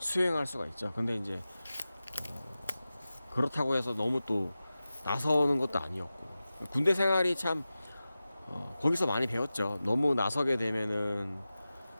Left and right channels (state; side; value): inverted; both; correlation -0.95